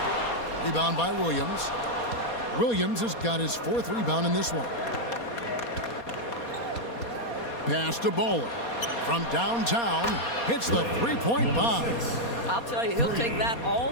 Rebound by Williams. Williams has got his 4th rebound in this one. Pass to Baller. From downtown, hits the 3-point bomb. I'll tell you, he'll take that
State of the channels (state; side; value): late; right; 4.2 ms